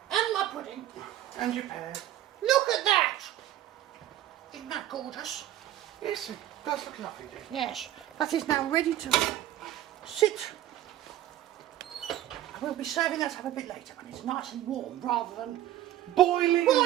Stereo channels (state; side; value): quieter; left; 13.0 dB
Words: And my pudding. And your pear. Look at that! Isn't that gorgeous? Yes, it does look lovely. Yes, that is now ready to sit. We'll be serving that up a bit later when it's nice and warm rather than Boiling